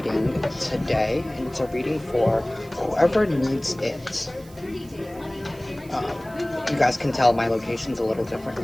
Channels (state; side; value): noise; right; hiss, 24 dB below the sound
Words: today, and it's a reading for whoever needs it. You guys can tell my location's a little